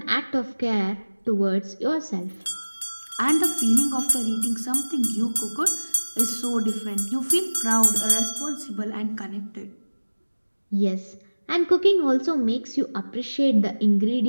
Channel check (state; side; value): inverted; both; correlation -1.00